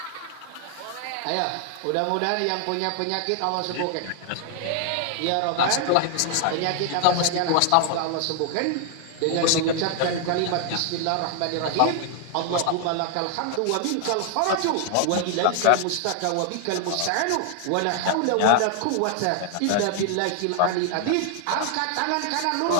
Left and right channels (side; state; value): both; different; correlation 0.00